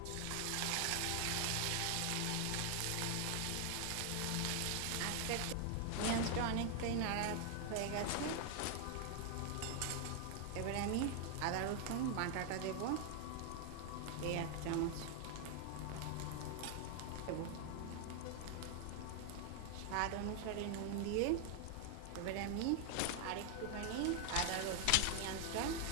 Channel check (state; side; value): different; both; correlation 0.01